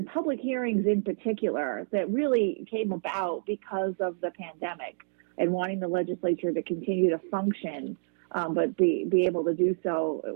public hearings in particular that really came about because of the pandemic and wanting the legislature to continue to function, but be able to do so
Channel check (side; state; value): left; silent; digital silence